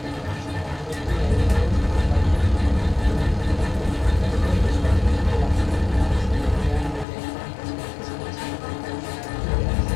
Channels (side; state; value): right; drops out; at 7.1 s